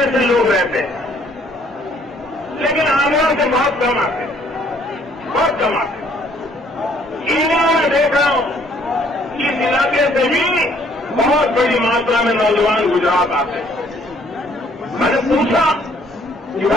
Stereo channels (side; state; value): both; normal; correlation 0.62